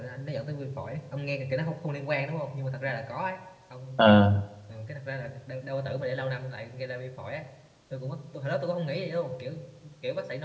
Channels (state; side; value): identical; both; correlation 1.00